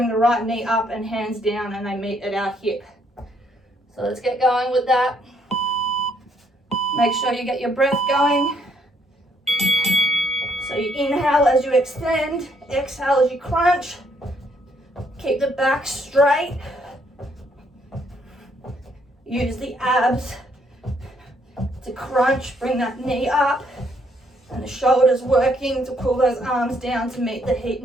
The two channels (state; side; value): normal; both; correlation 0.70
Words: the right knee up and hands down, and they meet at our hip. So let's get going with that. Make sure you get your breath going. So you inhale as you extend, exhale as you crunch. Keep the back straight. Use the abs to crunch, bring that knee up, and the shoulders working to pull those arms down to meet the